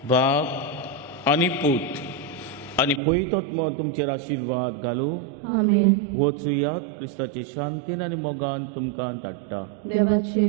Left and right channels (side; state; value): left; drops out; at 3.0 s